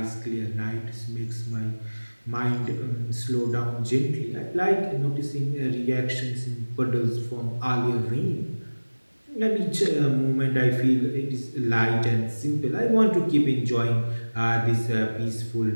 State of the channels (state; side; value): inverted; both; correlation -1.00